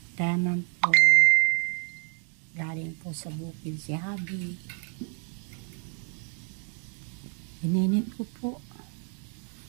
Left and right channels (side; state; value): left; quieter; 37.8 dB